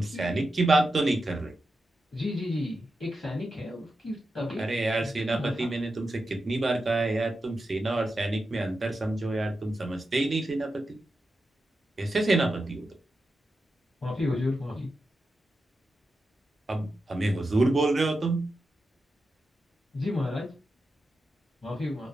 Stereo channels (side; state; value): both; normal; correlation 0.89